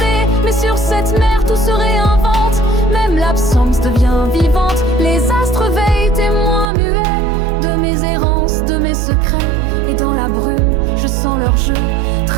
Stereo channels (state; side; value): drops out; left; at 6.7 s